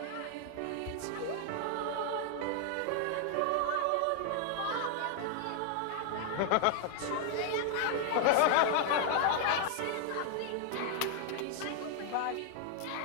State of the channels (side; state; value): both; different; correlation 0.00